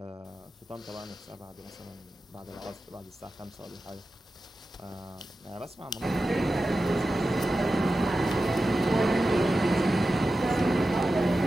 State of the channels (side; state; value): both; normal; correlation 0.93